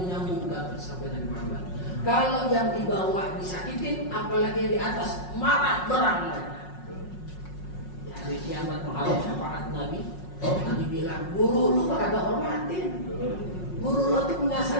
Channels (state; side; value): late; right; 5.5 ms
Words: sampai Nabi Muhammad. Kalau yang di bawah disakitin, apalagi yang di atas marah berang. Di hari kiamat menghadap syafaat Nabi, Nabi bilang, guru lu kagak hormatin. Guru lu tuh punya